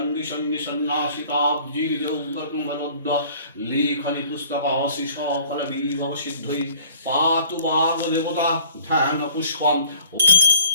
निजौगतमलद्द लेखनि पुस्तकासि सकल विभव सिद्धै पातु वाग्देवता ध्यान पुष्पं।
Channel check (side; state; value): both; inverted; correlation -0.53